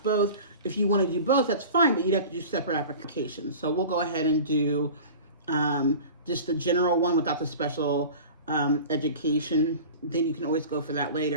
both. If you want to do both, that's fine, but you'd have to do separate applications. So we'll go ahead and do just the general one without the special education. Then you can always go for that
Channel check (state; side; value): inverted; both; correlation -0.38